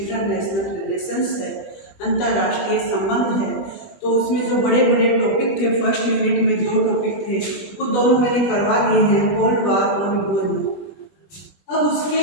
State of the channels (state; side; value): late; right; 20 ms